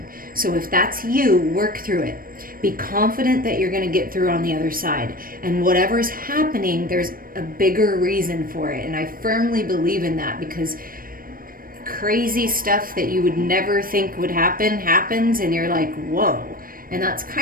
So if that's you, work through it. Be confident that you're going to get through on the other side. And whatever's happening, there's a bigger reason for it. And I firmly believe in that, because crazy stuff that you would never think would happen happens, and you're like, whoa. And that's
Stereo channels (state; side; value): late; left; 0.41 ms